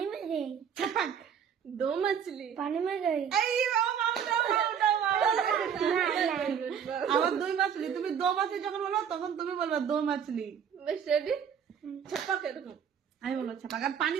में गए ছাপাক दो मछली पानी में गए আবার দই মাছলি তুমি দো মাছলি যখন বলো তখন তুমি বলবা দো মাছলি बस रेडी छपाक এরকম আমি বলবো ছাপাক আর পানি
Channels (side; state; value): left; quieter; 7.9 dB